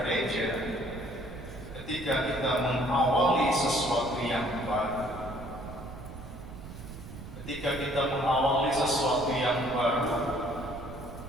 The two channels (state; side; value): noise; right; rumble, 12 dB below the sound